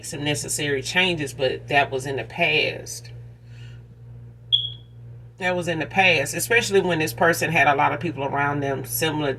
some necessary changes. But that was in the past. That was in the past, especially when this person had a lot of people around them similar,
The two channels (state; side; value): identical; both; correlation 1.00